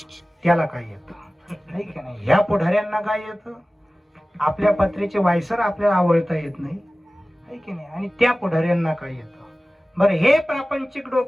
त्याला काय येतं, नाही का नाही. ह्या पुढाऱ्यांना काय येतं, आपल्या पत्रेचे वायसर आपल्याला आवडता येत नाही, आहे की नाही. आणि त्या पुढाऱ्यांना काय येतं. बरं, हे प्रापंचिक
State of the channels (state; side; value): normal; both; correlation 0.97